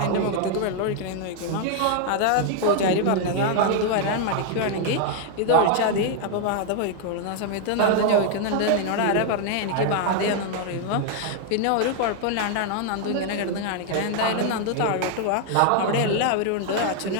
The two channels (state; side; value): different; both; correlation 0.00